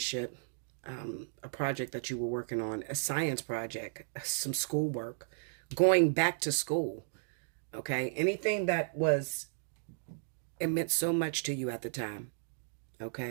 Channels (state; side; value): silent; left; digital silence